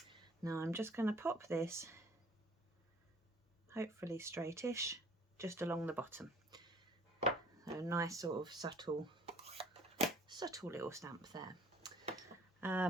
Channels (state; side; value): normal; both; correlation 0.54